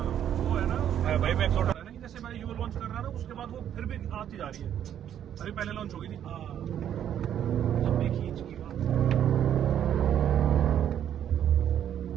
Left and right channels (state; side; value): quieter; left; 10.0 dB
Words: भाई, मैक्सोटा है ना, जैसे मैं यू लॉन्च कर रहा ना, उसके बाद वो फिर भी आती जा रही है। अरे पहले लॉन्च हो गई थी, लंबी खींच की बात,